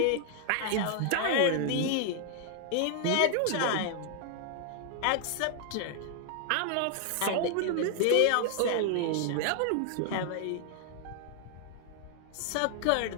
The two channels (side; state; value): both; different; correlation 0.00